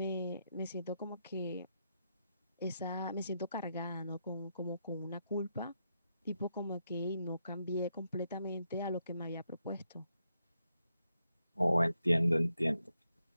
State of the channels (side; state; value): both; inverted; correlation -0.82